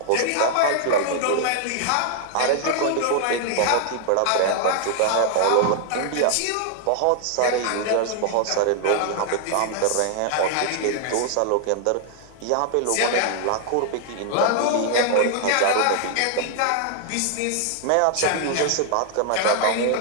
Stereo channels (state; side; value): different; both; correlation 0.00